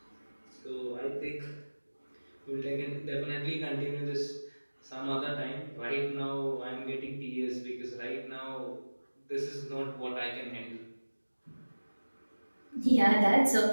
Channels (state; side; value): inverted; both; correlation -1.00